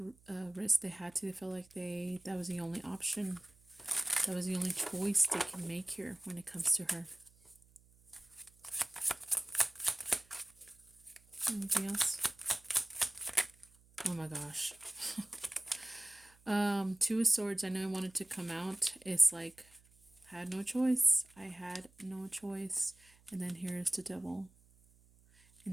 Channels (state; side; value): noise; right; hum, 29 dB below the sound